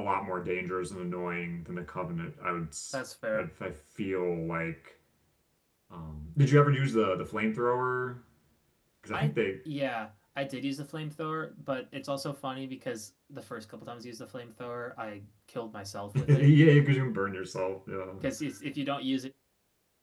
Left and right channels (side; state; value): both; identical; correlation 1.00